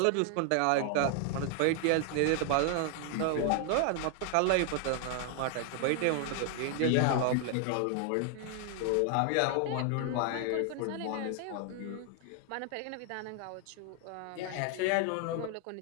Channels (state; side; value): different; both; correlation 0.00